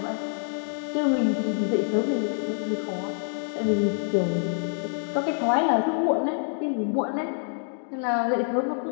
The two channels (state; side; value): silent; right; digital silence